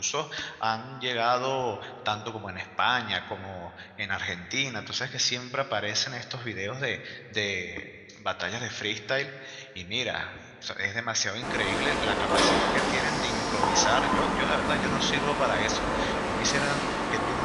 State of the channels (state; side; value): identical; both; correlation 1.00